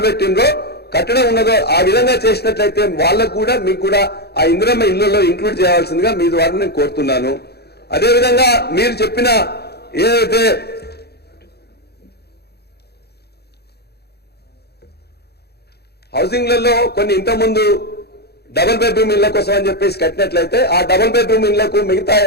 పెట్టిండ్రో కట్టడం ఉన్నదో ఆ విధంగా చేసినట్లయితే వాళ్ళకు కూడా మీకు కూడా ఆ ఇందిరమ్మ ఇల్లులో ఇంక్లూడ్ చేయాల్సిందిగా మీ ద్వారా నేను కోరుతున్నాను. అదేవిధంగా మీరు చెప్పిన ఏదైతే హౌసింగ్లలో కొన్ని ఇంతకుముందు డబుల్ బెడ్రూమ్ ఇళ్ల కోసం అని చెప్పేసి కట్టినట్లయితే ఆ డబుల్ బెడ్రూమ్ ఇళ్లకు మిగతా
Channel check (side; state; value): right; late; 0.47 ms